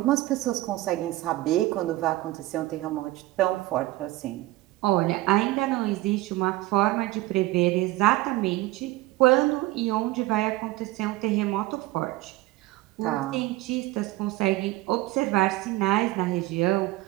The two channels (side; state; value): left; quieter; 18.4 dB